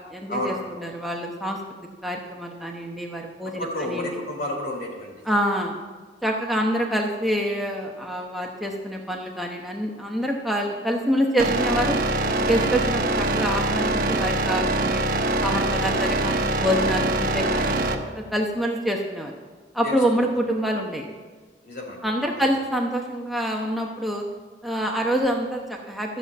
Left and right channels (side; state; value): both; normal; correlation 0.47